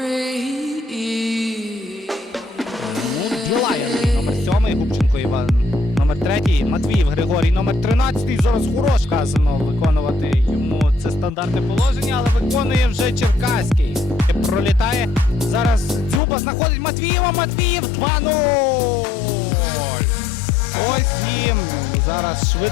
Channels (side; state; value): right; drops out; at 16.2 s